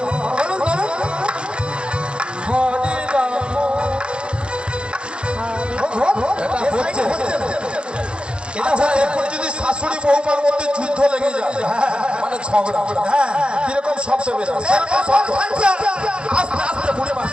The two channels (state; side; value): late; left; 0.055 ms